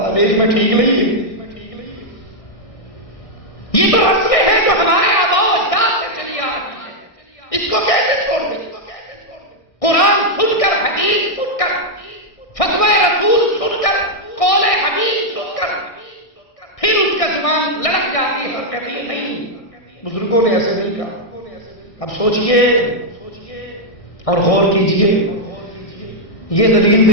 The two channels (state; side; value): late; right; 1.6 ms